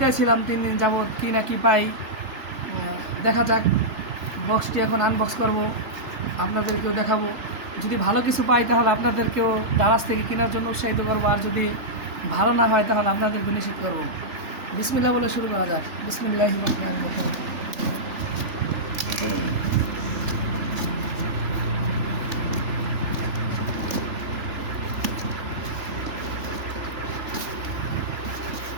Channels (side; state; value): left; late; 3.4 ms